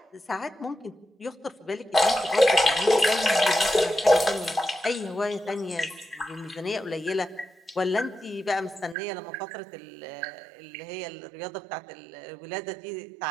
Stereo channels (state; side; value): drops out; left; at 9.0 s